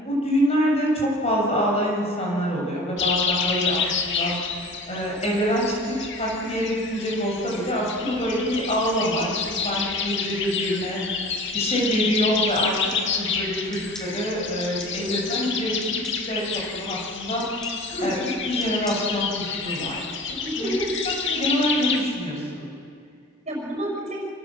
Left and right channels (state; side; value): normal; both; correlation 0.40